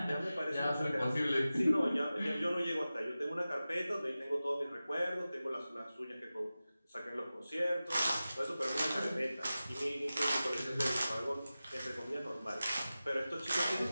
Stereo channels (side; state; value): both; inverted; correlation -0.95